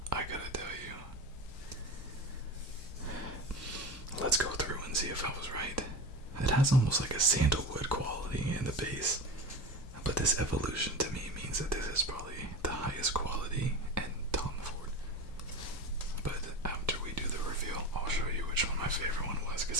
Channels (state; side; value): normal; both; correlation 0.27